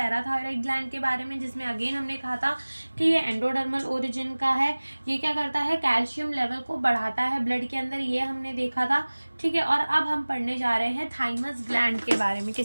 ग्लैंड के बारे में, जिसमें अगेन हमने कहा था कि ये एंडोडर्मल ओरिजिन का है। ये क्या करता है, कैल्शियम लेवल को बढ़ाता है ब्लड के अंदर, ये हमने देखा था, ठीक है। और अब हम पढ़ने जा रहे हैं थाइमस ग्लैंड के बारे में।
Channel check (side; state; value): both; inverted; correlation -1.00